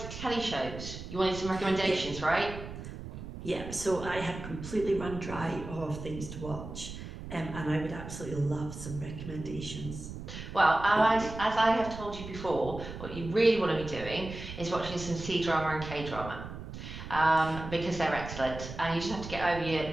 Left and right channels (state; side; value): noise; right; rumble, 10 dB below the sound